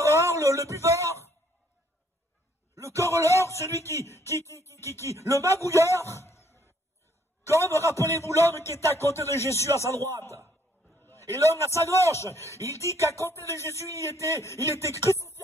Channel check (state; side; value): normal; both; correlation 0.65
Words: le buveur, le querelleur, celui le magouilleur. Comme, rappelez-vous l'homme qui était à côté de Jésus à sa droite. Et l'homme à sa gauche, il dit qu'à côté de Jésus, il était